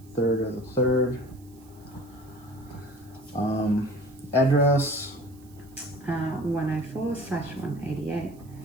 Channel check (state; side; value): noise; right; hiss, 28 dB below the sound